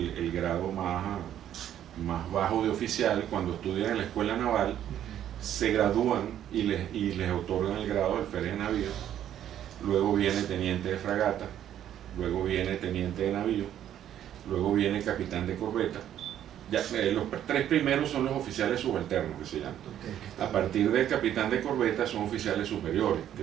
grado más bajo de oficial. Cuando estudian en la escuela naval, se gradúan y les otorgan el grado de alférez de navío. Luego viene teniente de fragata, luego viene teniente de navío, luego viene capitán de corbeta, Ya, los tres primeros son los oficiales subalternos, que se llaman. Okay, A partir del capitán de corbeta son oficiales superiores, que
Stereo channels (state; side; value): quieter; left; 10.8 dB